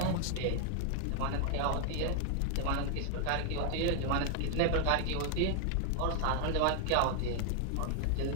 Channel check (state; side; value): different; both; correlation 0.00